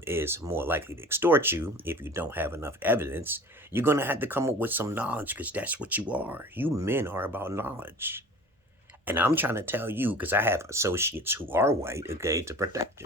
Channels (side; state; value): both; normal; correlation 0.41